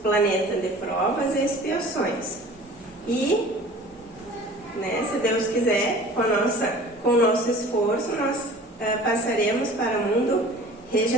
planeta de provas e expiações. E, né, se Deus quiser, com o nosso esforço, nós passaremos para o mundo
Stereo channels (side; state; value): both; normal; correlation 0.44